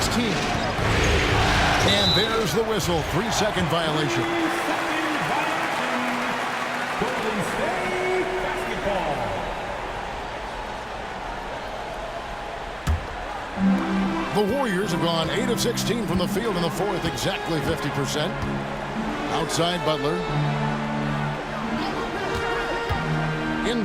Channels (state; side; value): identical; both; correlation 1.00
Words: And there's the whistle. 3-second violation. The Warriors have gone 8 of 16 from the field in the fourth, exactly 50%. Outside Butler.